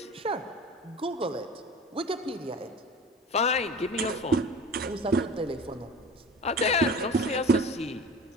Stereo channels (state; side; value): normal; both; correlation 0.38